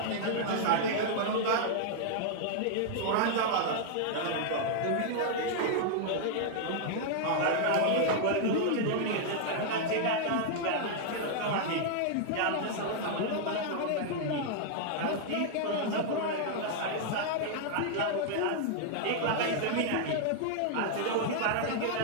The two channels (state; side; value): different; both; correlation 0.00